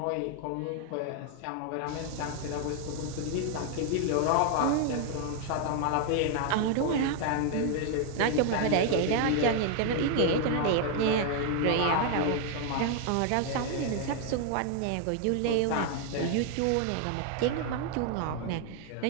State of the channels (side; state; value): both; different; correlation 0.00